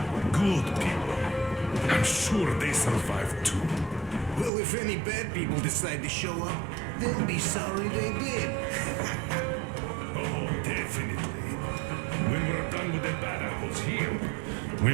good people. I'm sure they survive too. Well, if any bad people decide to show up, they'll be sorry they did. Oh, definitely. When we're done with the bad apples here, we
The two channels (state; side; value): drops out; left; at 4.5 s